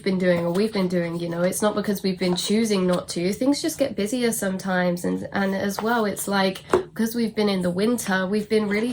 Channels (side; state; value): both; identical; correlation 1.00